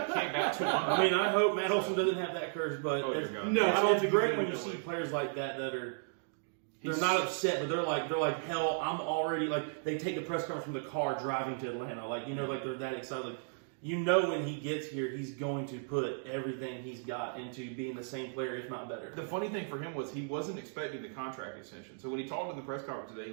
200. I hope Matt Olson doesn't have that curse, but it's great when you see players like that are they're not upset, but they're like hell. I'm already they take the press conference from the car driving to Atlanta. They're that excited. When he gets here, he's going to put everything he's got into being the same player, if not better. The funny thing for him was he wasn't expecting the contract extension. So when he talked in the press conference today,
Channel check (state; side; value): silent; left; digital silence